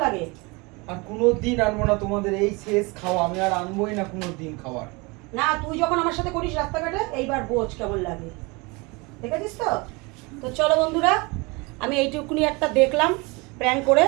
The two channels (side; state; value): left; quieter; 26.8 dB